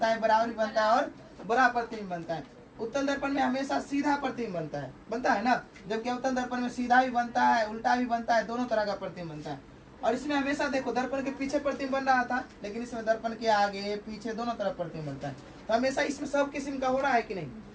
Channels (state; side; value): identical; both; correlation 1.00